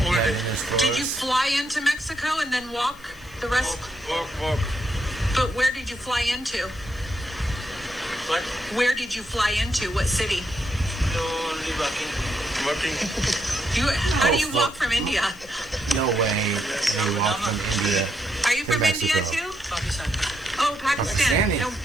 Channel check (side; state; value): left; noise; hiss, 25 dB below the sound